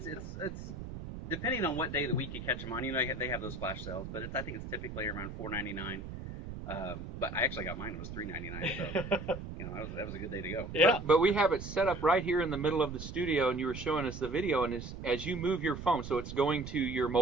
depending on what day of the week you catch them on. You know, they have those flash sales, but I think it's typically around $4.99. But I actually got mine. It was $3.99. So you know, that was a good day to go. Yeah. But we have it set up right here in the middle of the studio, and you were showing us the video. And as you move your phone, so it's going to your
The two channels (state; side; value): noise; right; rumble, 9 dB below the sound